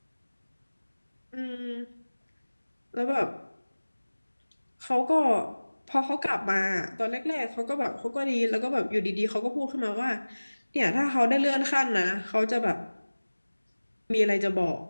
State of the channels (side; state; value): both; inverted; correlation -1.00